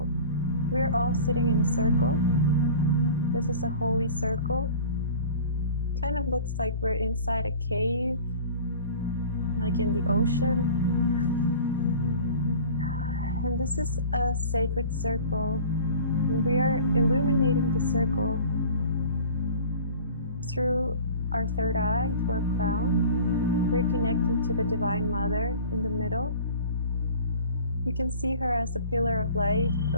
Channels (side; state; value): both; inverted; correlation -0.43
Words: We're all sitting in a circle. This is a holy circle. Kind of looks like we're inside a cave, like in the ocean. And this is a sacred circle. And we are illuminating the circle through our third eye, to our crown. We're connecting to the Divine Mother in the middle. You can see her as a pillar of light,